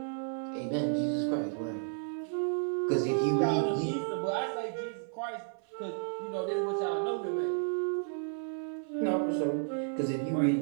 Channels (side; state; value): left; silent; 56 dB below the other